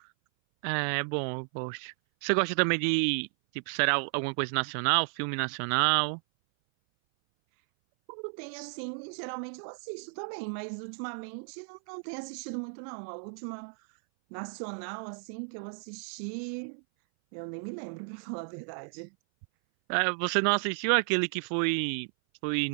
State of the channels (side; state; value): left; silent; 56 dB below the other